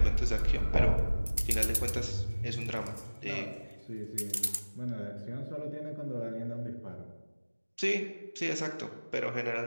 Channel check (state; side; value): inverted; both; correlation -1.00